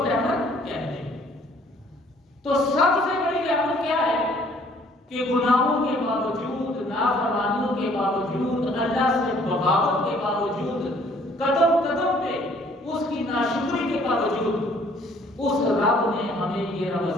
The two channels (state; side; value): normal; both; correlation 0.59